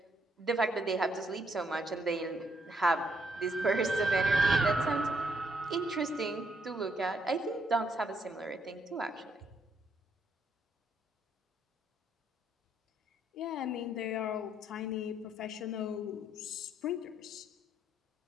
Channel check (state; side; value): normal; both; correlation 0.74